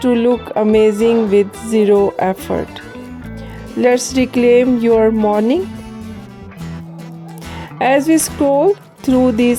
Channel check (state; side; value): identical; both; correlation 1.00